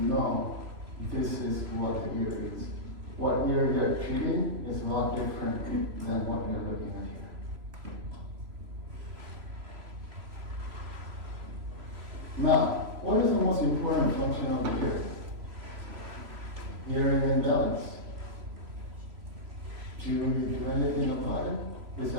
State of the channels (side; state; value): left; late; 3.0 ms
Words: this is what the ear is. What ear you're treating is a lot different than what you're looking at here. Now, what is the most important function of the ear? Hearing and balance. Do you do anything about it?